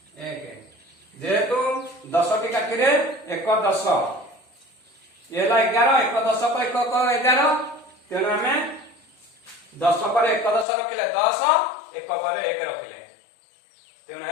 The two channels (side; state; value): right; drops out; at 10.7 s